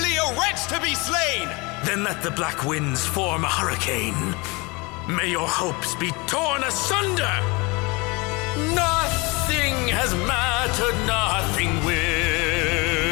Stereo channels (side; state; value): right; quieter; 26.6 dB